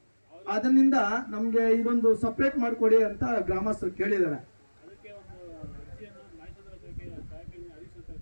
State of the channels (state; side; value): inverted; both; correlation -1.00